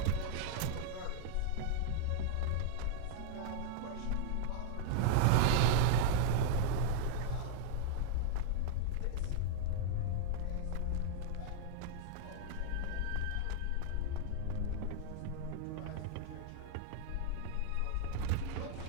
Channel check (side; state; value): both; different; correlation -0.01